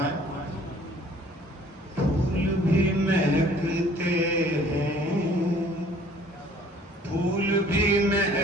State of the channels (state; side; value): normal; both; correlation 0.55